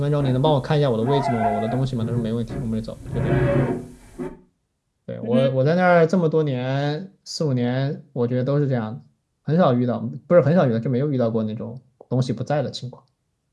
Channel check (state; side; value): identical; both; correlation 1.00